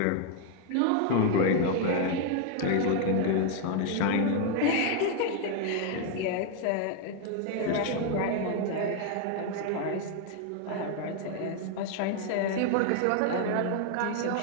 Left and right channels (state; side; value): different; both; correlation 0.01